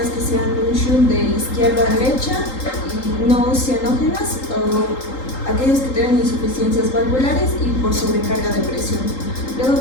que sean un shunt de izquierda a derecha y no cianógenas, o aquellos que tengan insuficiencias valvulares y por sobrecarga de presión. Luego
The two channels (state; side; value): late; right; 3.8 ms